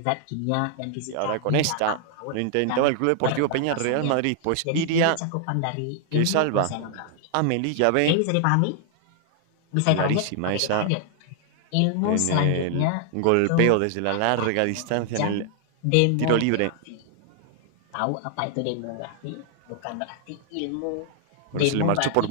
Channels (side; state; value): both; different; correlation 0.00